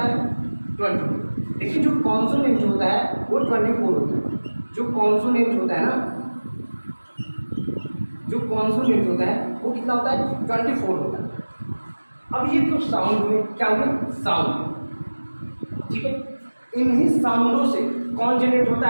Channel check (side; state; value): both; inverted; correlation -1.00